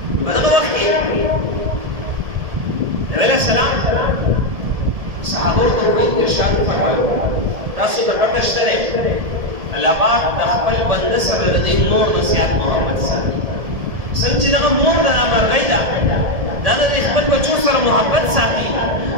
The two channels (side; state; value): left; late; 1.7 ms